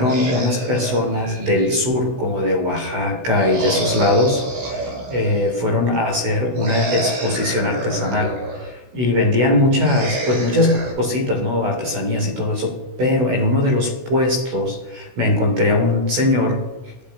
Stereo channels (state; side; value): late; left; 16 ms